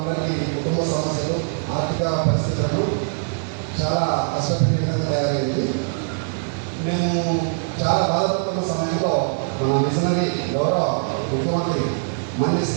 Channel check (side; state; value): left; silent; 63 dB below the other